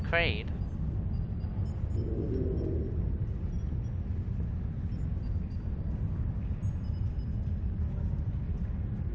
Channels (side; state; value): both; identical; correlation 1.00